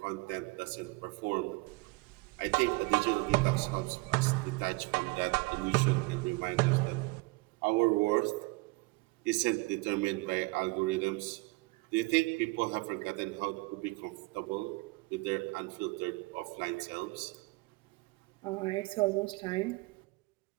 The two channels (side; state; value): left; quieter; 25.1 dB